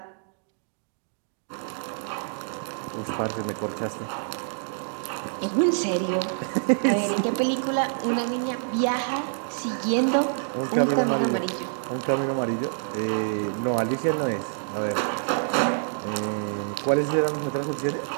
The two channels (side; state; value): left; silent; digital silence